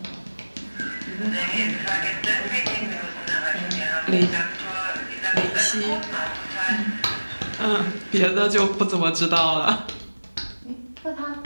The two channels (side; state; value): both; inverted; correlation -1.00